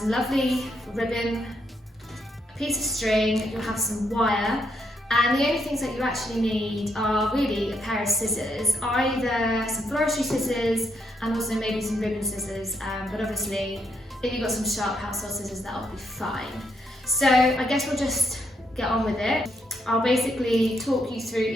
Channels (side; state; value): both; normal; correlation 0.77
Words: lovely ribbon, a piece of string, you'll have some wire, and the only things that you actually need are really a pair of scissors, either some floristry scissors and also maybe some ribbon scissors, but obviously if you've got some sharp household scissors, that'll be fine. So I guess we'll just get on with it. I'll basically talk you through